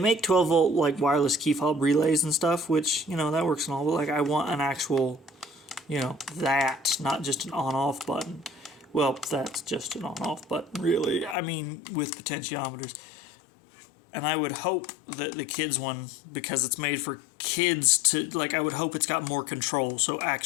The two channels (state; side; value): drops out; right; at 11.4 s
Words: 12 volt like wireless key fob relays and stuff, which, that works and all, but like I want an actual, that, not just an on-off button. Well, that's just an on-off button, really. I mean, with potentiometers. And I would hope that the kids one, because it's made for kids to, I would hope it's got more control, so